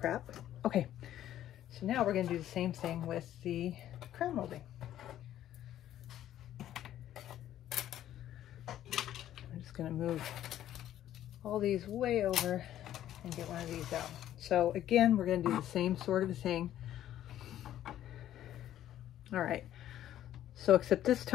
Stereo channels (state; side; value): quieter; right; 12.1 dB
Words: Okay, So now we're going to do the same thing with the crown molding. I'm just going to move all these way over and get one of these out. So again, we're going to do the same sort of thing. All right, so except this